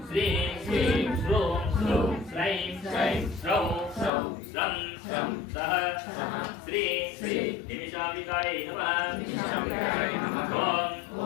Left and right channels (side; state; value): right; drops out; at 4.1 s